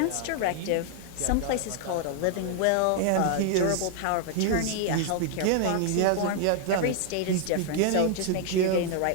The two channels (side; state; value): both; different; correlation 0.00